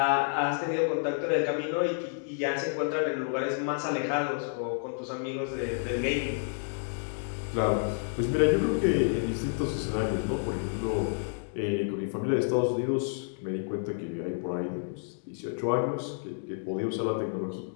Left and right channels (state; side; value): silent; right; digital silence